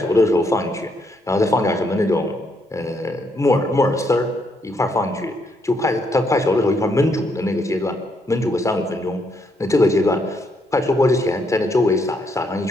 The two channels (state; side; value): normal; both; correlation 0.75